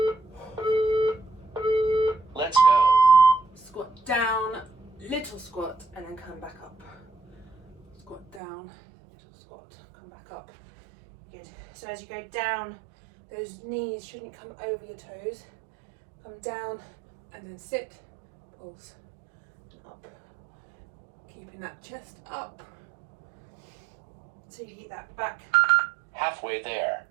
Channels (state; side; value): drops out; left; at 8.4 s